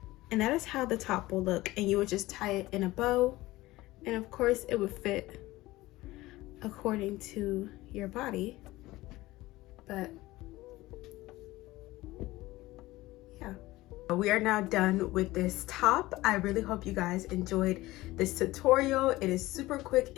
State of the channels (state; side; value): quieter; right; 18.4 dB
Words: And that is how the top will look, and you would just tie it in a bow, and of course it would fit according to your body. But yeah, we are now done with this top. I really hope you guys enjoyed this tutorial. It is super quick